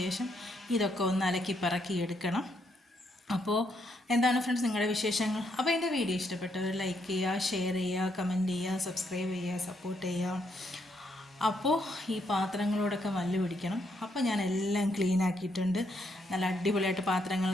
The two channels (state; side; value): normal; both; correlation 0.76